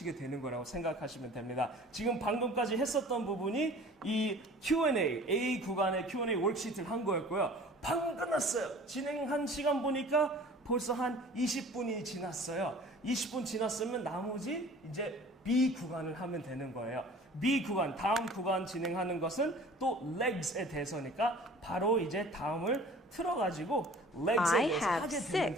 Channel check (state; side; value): normal; both; correlation 0.46